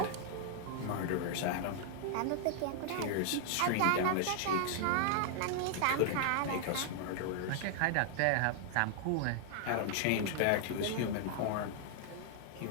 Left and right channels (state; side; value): different; both; correlation 0.00